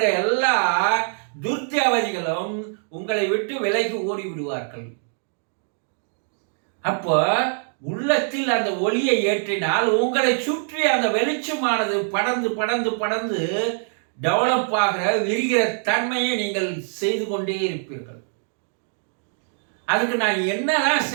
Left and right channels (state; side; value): silent; left; 57 dB below the other